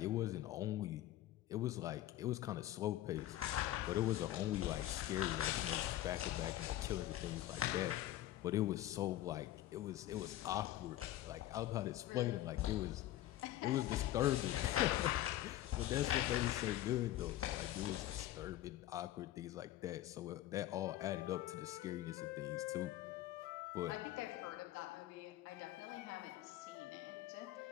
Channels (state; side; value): quieter; right; 14.1 dB